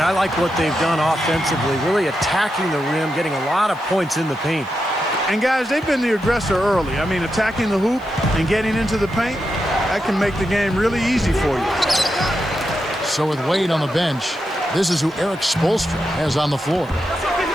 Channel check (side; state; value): left; noise; hiss, 30 dB below the sound